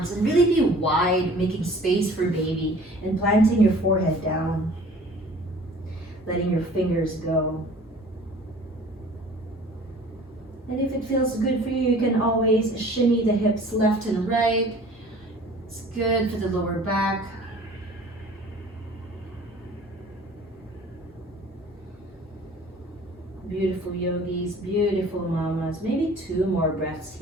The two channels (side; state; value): both; normal; correlation 0.48